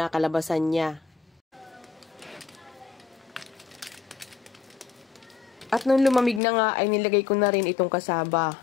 niya. At nung lumamig na nga ay nilagay ko na rin itong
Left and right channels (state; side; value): drops out; right; at 6.4 s